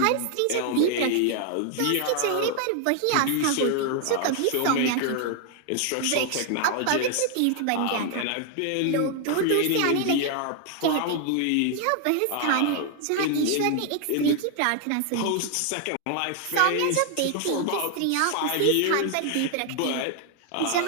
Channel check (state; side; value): different; both; correlation 0.00